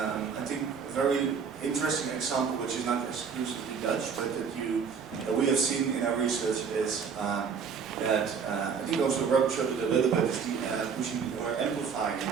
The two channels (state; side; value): quieter; left; 6.2 dB